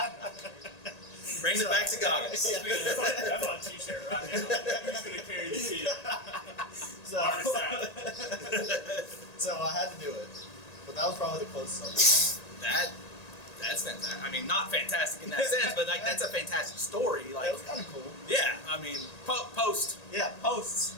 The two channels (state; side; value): late; right; 1.8 ms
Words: Brings it back to goggles. Yeah. That's on a t-shirt right now. Who's gonna carry the kid? So I had to do it. But that was probably the closest I've That's fantastic. I mean, not fantastic in that sense, but like that's a fantastic story. Like it was kind of cool. Yeah, I mean, post. Yeah, posts.